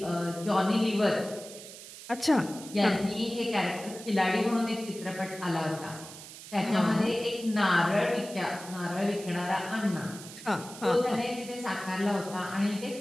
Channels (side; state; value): right; noise; hiss, 14 dB below the sound